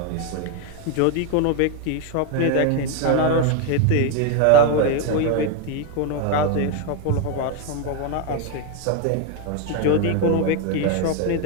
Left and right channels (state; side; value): different; both; correlation 0.01